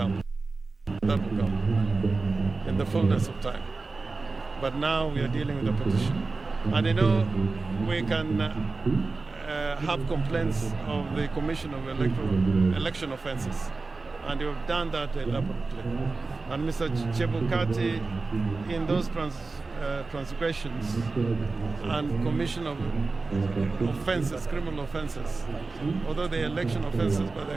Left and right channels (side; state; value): left; quieter; 3.8 dB